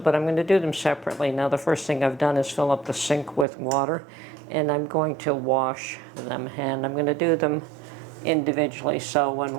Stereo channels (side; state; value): left; drops out; at 3.5 s